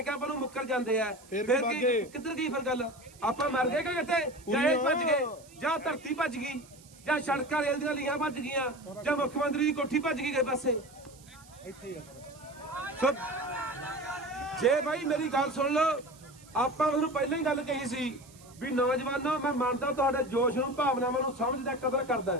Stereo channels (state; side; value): noise; right; hiss, 24 dB below the sound